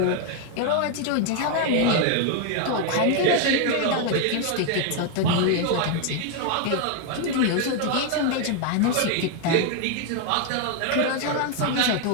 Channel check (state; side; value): different; both; correlation 0.01